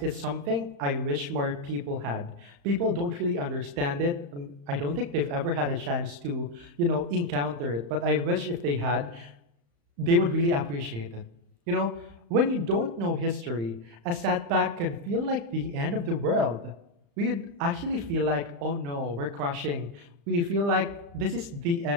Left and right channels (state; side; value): late; left; 35 ms